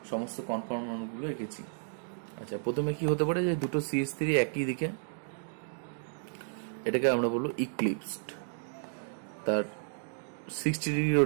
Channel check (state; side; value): silent; left; digital silence